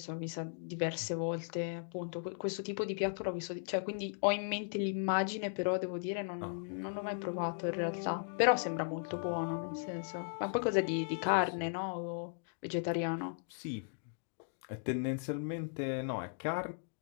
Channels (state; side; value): silent; right; digital silence